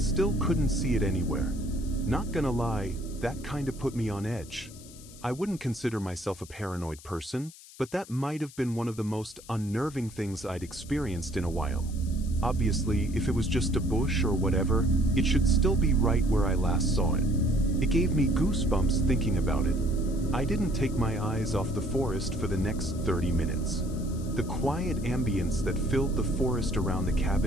still couldn't see it anywhere. Not gonna lie, that kinda put me on edge. I wouldn't consider myself a paranoid person, but that might have been one of the most unnerving things I'd experienced in a while. Obviously, if it was just a bush or whatever, it should still be right where I last saw it. It gave me goosebumps thinking about it. I didn't take my eyes off the forest for the next 30 minutes. The quiet ambience that filled the forest around the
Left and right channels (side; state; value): left; noise; hiss, 20 dB below the sound